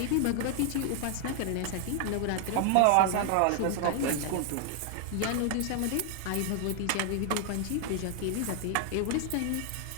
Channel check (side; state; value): both; different; correlation 0.00